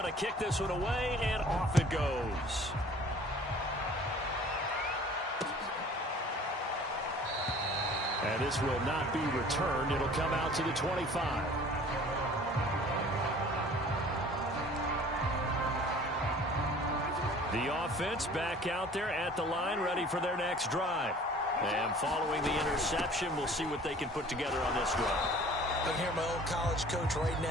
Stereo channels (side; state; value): both; normal; correlation 0.49